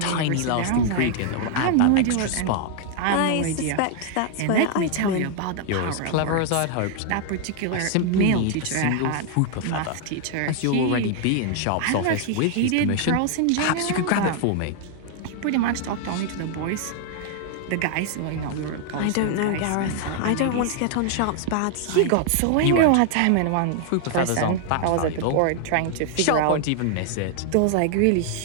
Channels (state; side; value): different; both; correlation 0.00